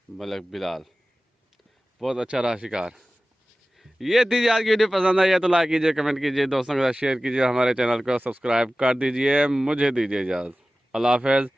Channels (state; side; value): normal; both; correlation 0.96